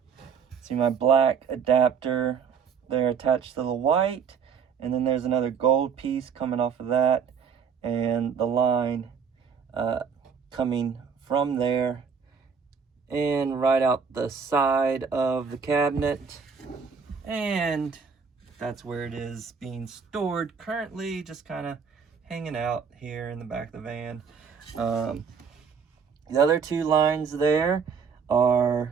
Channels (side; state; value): left; quieter; 6.4 dB